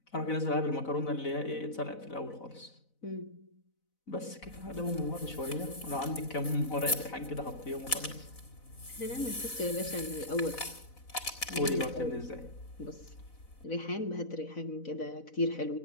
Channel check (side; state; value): right; late; 4.0 ms